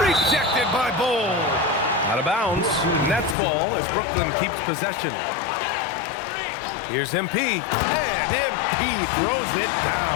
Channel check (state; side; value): drops out; right; at 3.4 s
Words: by Bowl. Out of bounds. Nets ball as Brooklyn keeps possession. Here's MP. And MP throws it